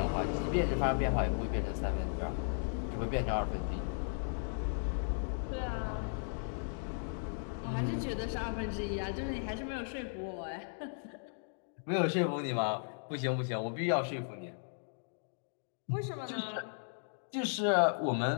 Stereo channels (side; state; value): right; silent; digital silence